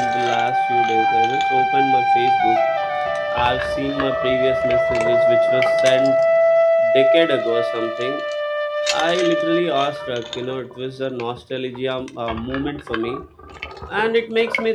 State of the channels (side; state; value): both; identical; correlation 1.00